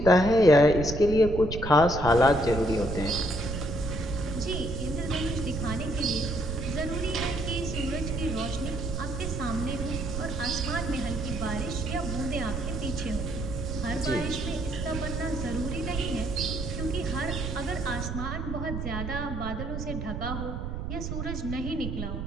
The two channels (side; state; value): right; noise; rumble, 5 dB below the sound